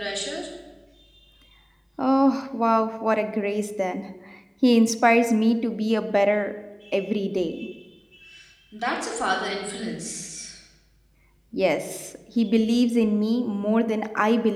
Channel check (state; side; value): identical; both; correlation 1.00